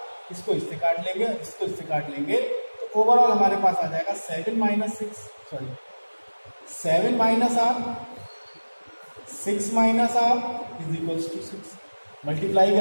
इसको इससे काट लेंगे, इसको इससे काट लेंगे, तो ओवरऑल हमारे पास आ जाएगा 7 minus 7 minus r 6 minus r is equals to 6। Multiply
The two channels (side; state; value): both; inverted; correlation -1.00